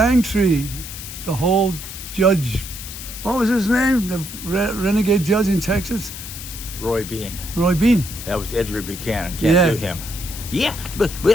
the whole judge. What was his name? The renegade judge in Texas. Roy Bean. Roy Bean. That was Edward Buchanan. Can't do him. Yeah, but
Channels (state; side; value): noise; left; hiss, 10 dB below the sound